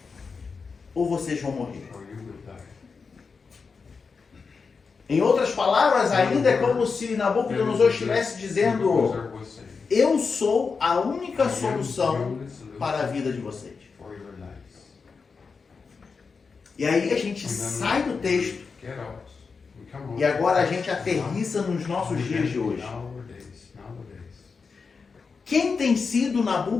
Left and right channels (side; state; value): right; quieter; 5.0 dB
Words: ou vocês vão morrer. Em outras palavras, ainda é como se Nabucodonosor estivesse dizendo: eu sou a única solução para a vida de vocês. E aí a gente sai do texto e agora a gente aterrissa nos nossos dias de hoje. Quem tem sido